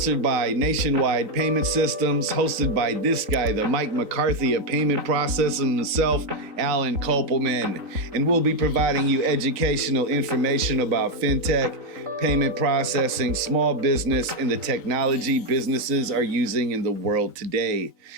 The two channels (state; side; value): late; left; 3.9 ms